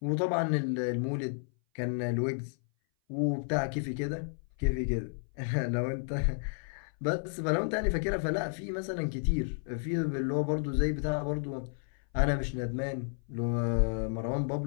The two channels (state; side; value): silent; right; 57 dB below the other